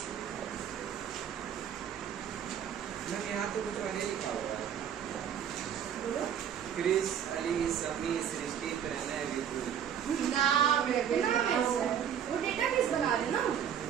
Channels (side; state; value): left; quieter; 8.9 dB